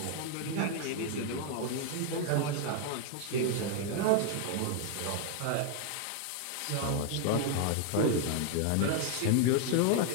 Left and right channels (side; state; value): both; different; correlation 0.01